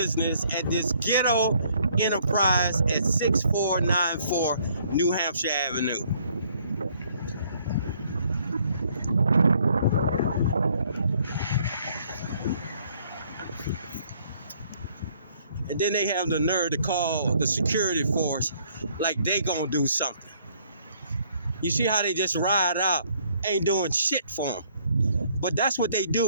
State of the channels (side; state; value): both; inverted; correlation -0.64